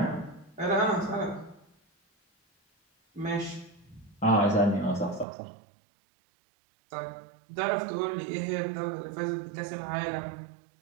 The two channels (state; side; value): drops out; left; at 5.2 s